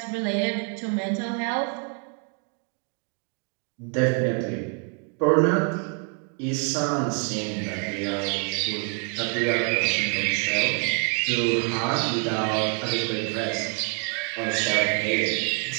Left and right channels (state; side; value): quieter; left; 37.0 dB